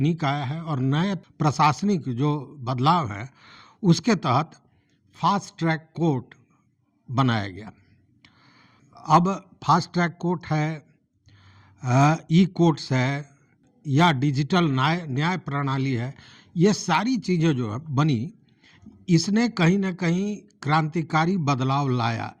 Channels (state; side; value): identical; both; correlation 1.00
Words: आया है और नए प्रशासनिक जो बदलाव है उसके तहत फास्ट ट्रैक कोर्ट बनाया गया। अब फास्ट ट्रैक कोर्ट है, ई कोर्ट्स है या डिजिटल न्याय प्रणाली है, ये सारी चीज़ें जो है बनी, इसने कहीं ना कहीं क्रांतिकारी बदलाव लाया,